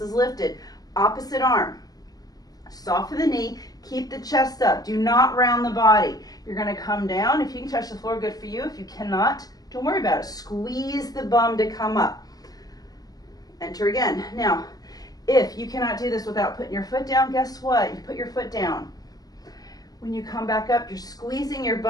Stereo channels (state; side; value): late; right; 0.18 ms